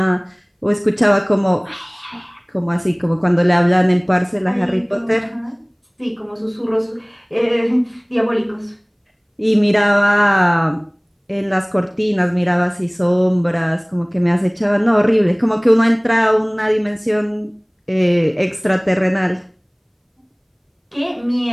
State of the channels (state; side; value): identical; both; correlation 1.00